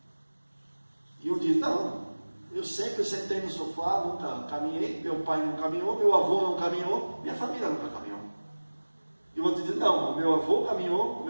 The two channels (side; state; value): both; inverted; correlation -1.00